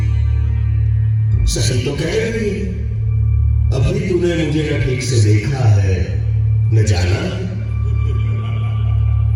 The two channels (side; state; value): both; identical; correlation 1.00